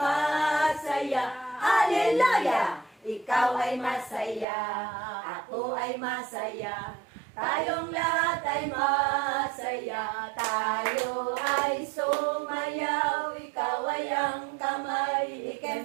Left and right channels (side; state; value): left; drops out; at 4.5 s